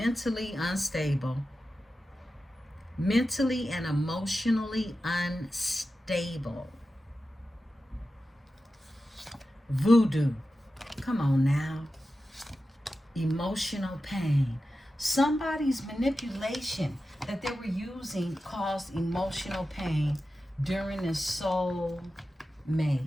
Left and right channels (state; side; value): normal; both; correlation 0.93